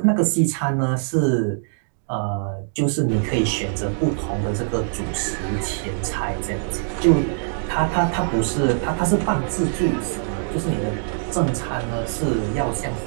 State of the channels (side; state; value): left; silent; digital silence